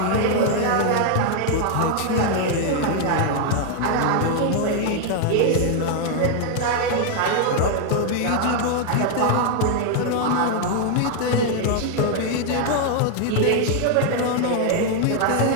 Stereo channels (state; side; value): different; both; correlation 0.00